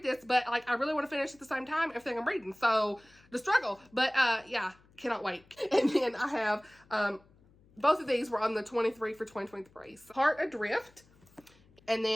this, but like I really want to finish at the same time everything I'm reading. So the struggle. But yeah, cannot wait. And then I have both of these were on the 23 for 2023. So Heart Adrift. And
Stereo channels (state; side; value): noise; left; hum, 29 dB below the sound